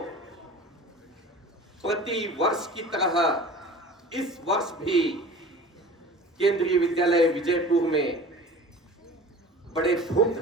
प्रति वर्ष की तरह इस वर्ष भी केंद्रीय विद्यालय विजयपुर में बड़े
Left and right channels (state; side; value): normal; both; correlation 0.40